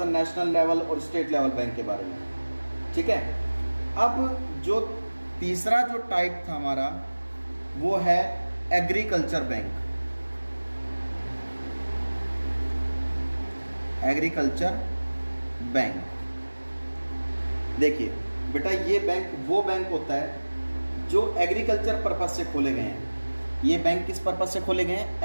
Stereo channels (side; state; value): both; inverted; correlation -1.00